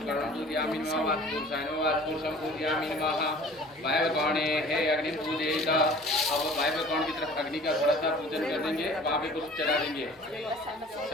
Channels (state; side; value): normal; both; correlation 0.47